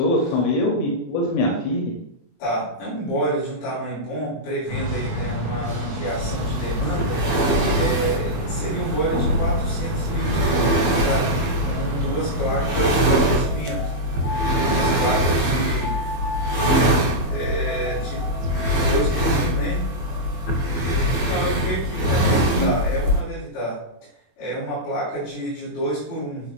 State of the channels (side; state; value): right; late; 24 ms